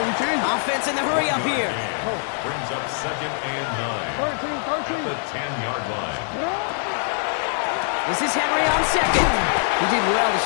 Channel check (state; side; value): silent; right; 60 dB below the other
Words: Offense in the hurry up here. Brings up 2nd and 9. 13. At the 10-yard line. This is Henry on 2nd. He did well to